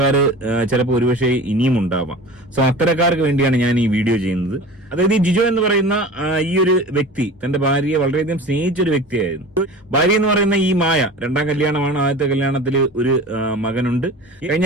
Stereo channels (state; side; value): normal; both; correlation 0.37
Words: ചിലപ്പോൾ ഒരുപക്ഷെ ഇനിയും ഉണ്ടാവാം. സോ അത്തരക്കാർക്ക് വേണ്ടിയാണ് ഞാൻ ഈ വീഡിയോ ചെയ്യുന്നത്. അതായത് ഈ ജിജോ എന്ന് പറയുന്ന ഈ ഒരു വ്യക്തി തന്റെ ഭാര്യയെ വളരെയധികം സ്നേഹിച്ചൊരു വ്യക്തിയായിരുന്നു. ഭാര്യ എന്ന് പറയുന്ന ഈ മായ രണ്ടാം കല്യാണമാണ്. ആദ്യത്തെ കല്യാണത്തിൽ ഒരു മകനുണ്ട്.